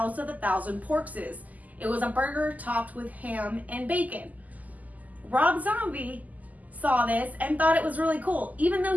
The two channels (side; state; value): left; late; 0.079 ms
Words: of a Thousand Porkses. It was a burger topped with ham and bacon. Rob Zombie saw this and thought it was really cool. Even though